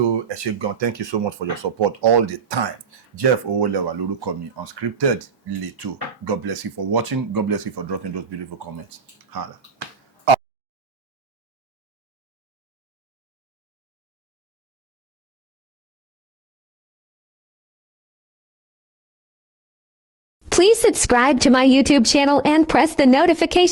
ẹ ṣé gan, thank you so much for your support all the time. Jeff Owolewa lórúkọ mi, Unscripted Leto. God bless you for watching. God bless you for dropping those beautiful comments. Hala. Please subscribe to my YouTube channel and press the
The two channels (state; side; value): normal; both; correlation 0.69